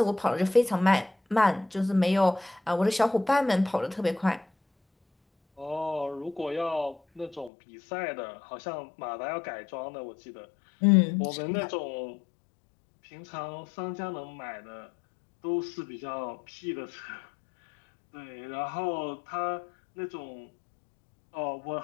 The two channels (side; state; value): right; drops out; at 7.5 s